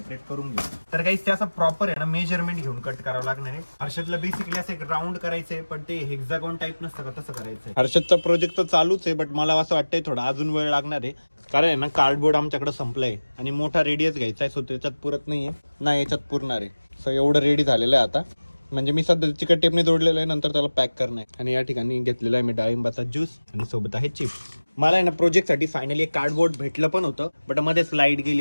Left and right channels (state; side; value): inverted; both; correlation -1.00